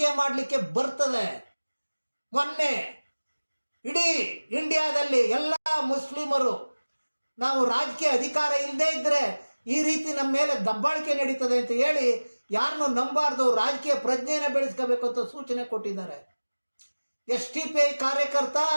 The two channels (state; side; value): inverted; both; correlation -1.00